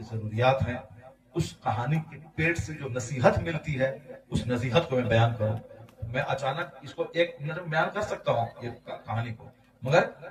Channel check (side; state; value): both; identical; correlation 1.00